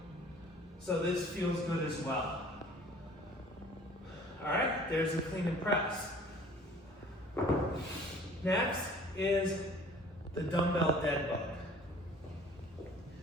So this feels good as well. All right, there's the clean and press. Next is the dumbbell Deadbug.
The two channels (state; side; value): normal; both; correlation 0.51